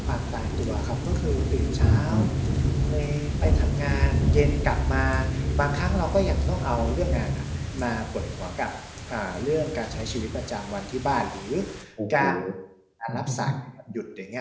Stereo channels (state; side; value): identical; both; correlation 1.00